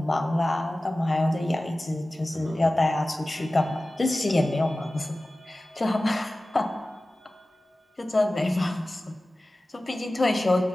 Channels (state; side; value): normal; both; correlation 0.96